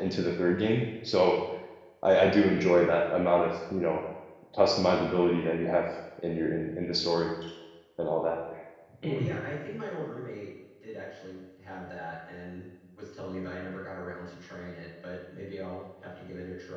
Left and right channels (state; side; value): identical; both; correlation 1.00